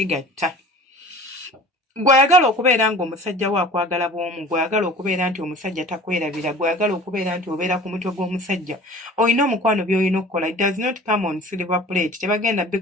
Gw'ayagala okubeera ng'omusajja we akwagala bw'omu, gw'ayagala okubeera nti omusajja takwerabira, gw'ayagala okubeera nti obeera ku mutwe gw'omusajja, olina omukwano by'olina okukola. It does not come on silver plate. Tebagenda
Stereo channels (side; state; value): both; normal; correlation 0.43